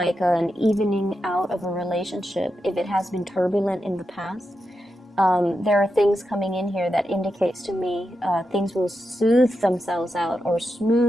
an evening out of a relationship if it has been turbulent in the past. There are things coming in here that indicates to me things will soothe themselves out or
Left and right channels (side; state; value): both; normal; correlation 0.87